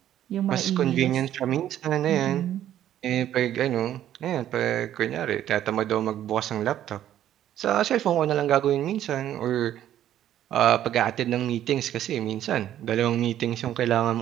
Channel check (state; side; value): quieter; left; 11.6 dB